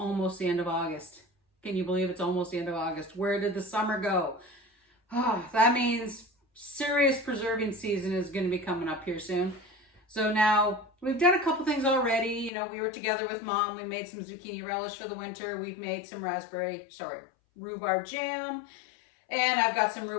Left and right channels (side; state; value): right; drops out; at 12.5 s